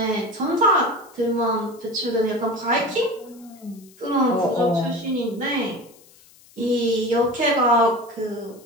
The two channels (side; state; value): left; noise; hiss, 26 dB below the sound